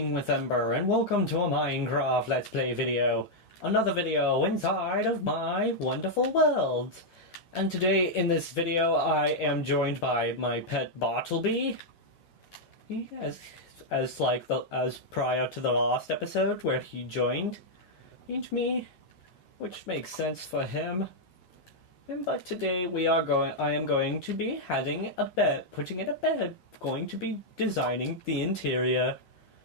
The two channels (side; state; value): right; late; 11 ms